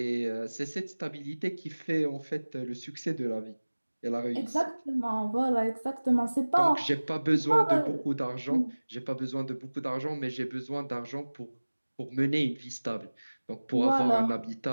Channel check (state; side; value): inverted; both; correlation -1.00